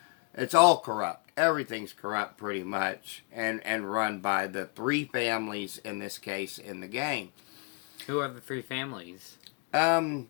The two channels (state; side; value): quieter; right; 33.4 dB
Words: It's all corrupt. Everything's corrupt pretty much, and run by the 3 families in this case in the game. Who are the 3 families? I'm